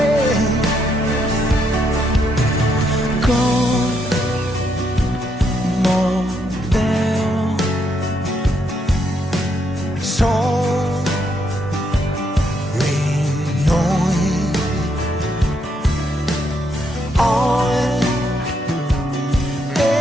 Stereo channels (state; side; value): normal; both; correlation 0.76